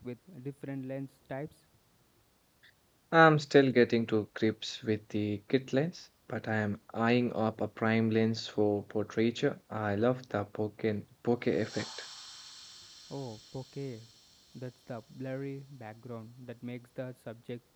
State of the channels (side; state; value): both; identical; correlation 1.00